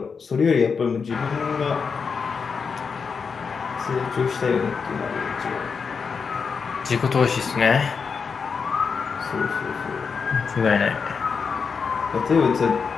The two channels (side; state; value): right; quieter; 5.6 dB